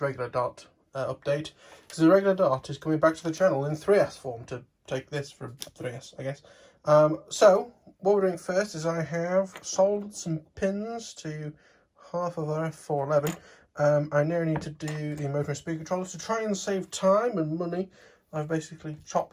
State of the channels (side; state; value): both; identical; correlation 1.00